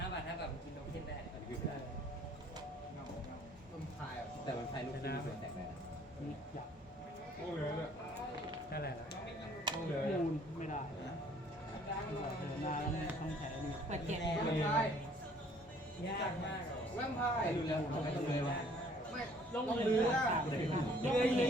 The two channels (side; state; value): both; normal; correlation 0.58